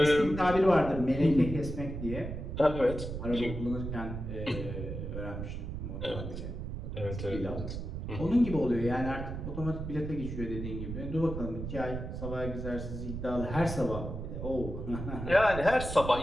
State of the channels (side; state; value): right; noise; rumble, 6 dB below the sound